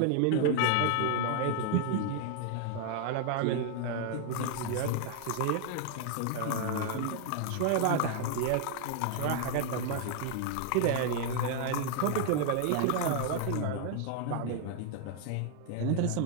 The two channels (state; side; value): different; both; correlation 0.00